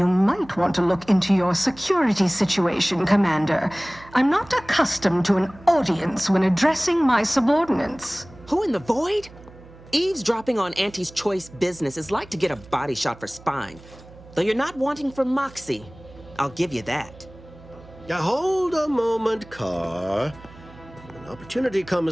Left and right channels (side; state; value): right; noise; hum, 21 dB below the sound